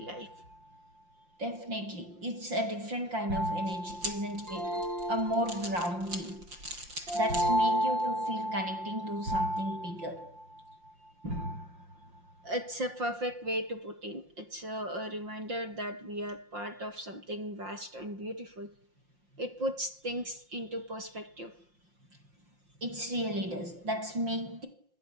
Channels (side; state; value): left; late; 5.7 ms